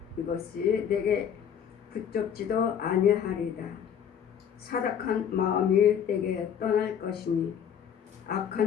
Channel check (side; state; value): right; quieter; 8.4 dB